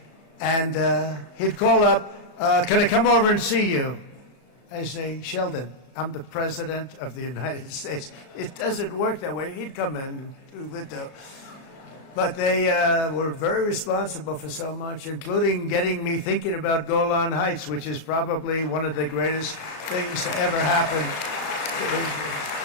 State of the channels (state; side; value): late; right; 33 ms